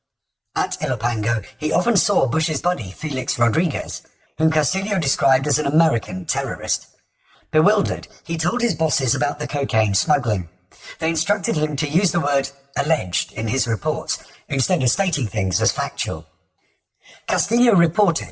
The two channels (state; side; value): identical; both; correlation 1.00